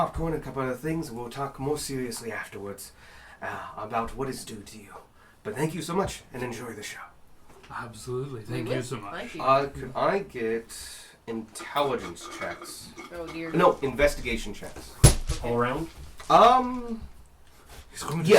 and a couple other things, and we'll talk more seriously afterwards. about what is due to you. But thank you so much, and enjoy the show. Absolutely. Thank you so much. Thank you. Could I get intelligence checks? Oh dear. No, investigation checks. All around? He's going to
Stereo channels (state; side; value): identical; both; correlation 1.00